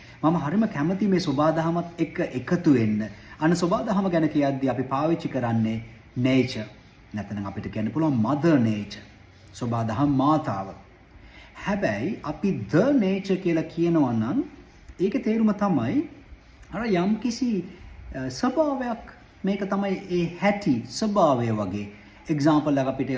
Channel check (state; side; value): identical; both; correlation 1.00